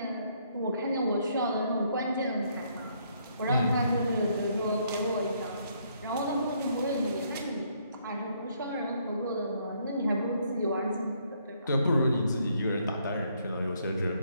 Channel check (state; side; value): inverted; both; correlation -0.70